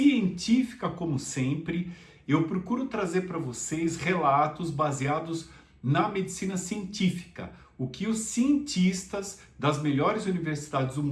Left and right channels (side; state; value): both; identical; correlation 1.00